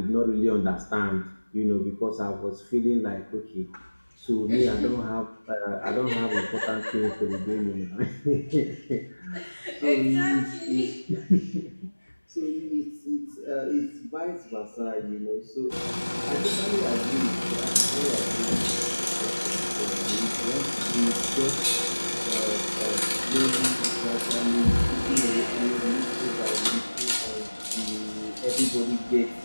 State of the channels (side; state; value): both; inverted; correlation -1.00